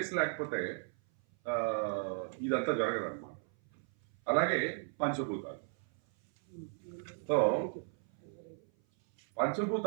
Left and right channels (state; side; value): silent; left; 54 dB below the other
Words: లేకపోతే ఇదంతా జరగదన్నమాట. అలాగే పంచభూతాలు. సో